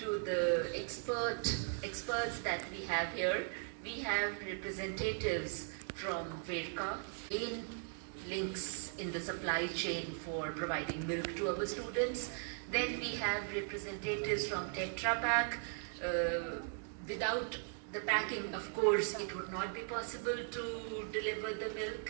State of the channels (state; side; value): silent; left; 52 dB below the other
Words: the experts that we have here, we have representatives from Verka, in links in the supply chain for providing milk to our students. Then we have representatives from Tetra Pak. Without the packing, of course, it would not be possible to deliver the